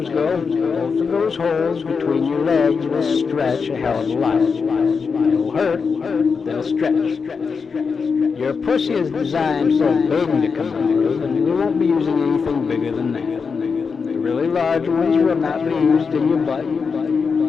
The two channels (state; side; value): quieter; right; 5.4 dB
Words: go, both of those holes between your legs will stretch a hell of a lot. It'll hurt, they'll stretch. Your pussy is designed for a baby to come out of, and you won't be using anything bigger than that. The really large ones will not be used in your butt.